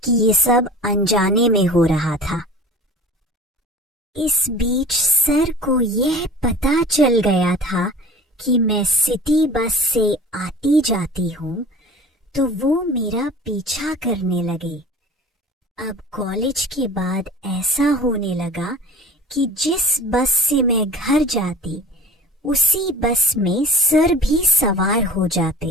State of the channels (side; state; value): both; normal; correlation 0.40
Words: कि ये सब अनजाने में हो रहा था। इस बीच सर को यह पता चल गया था कि मैं सिटी बस से आती जाती हूँ, तो वो मेरा पीछा करने लगे। अब कॉलेज के बाद ऐसा होने लगा कि जिस बस से मैं घर जाती, उसी बस में सर भी सवार हो